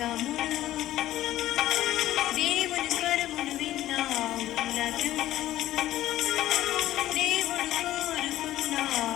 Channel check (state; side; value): quieter; right; 14.1 dB